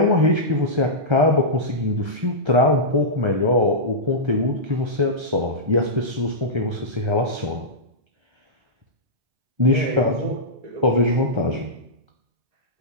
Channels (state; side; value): late; left; 1.3 ms